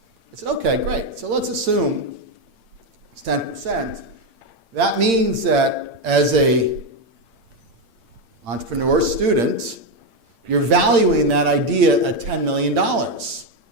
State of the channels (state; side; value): late; left; 8.8 ms